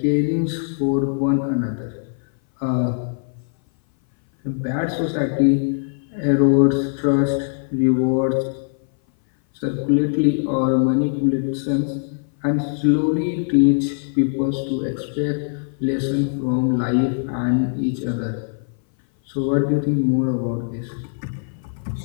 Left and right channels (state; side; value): silent; right; 59 dB below the other